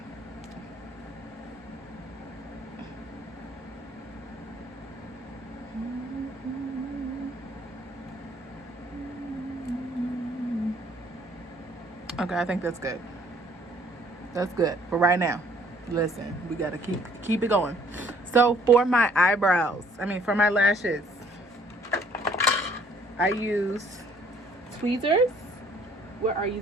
Okay, I think that's good. That's good for right now. Listen, we gotta keep it going. So for my eyebrows, for my lashes, I use tweezers. Where are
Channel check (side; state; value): both; normal; correlation 0.61